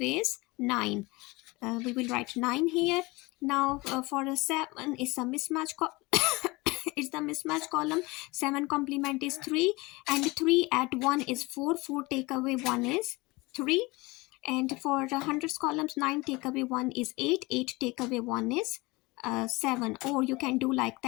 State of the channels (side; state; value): right; quieter; 23.4 dB